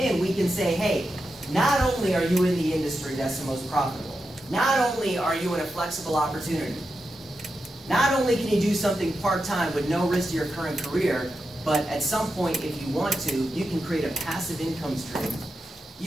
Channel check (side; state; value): both; normal; correlation 0.88